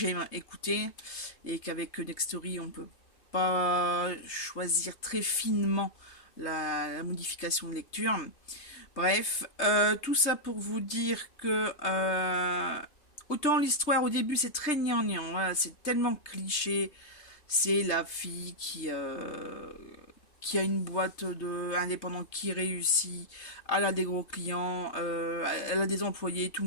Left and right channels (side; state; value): right; late; 3.2 ms